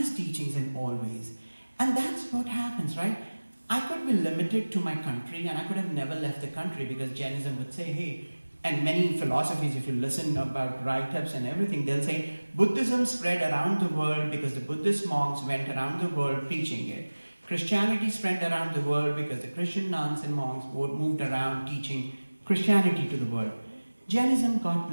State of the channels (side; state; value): both; inverted; correlation -1.00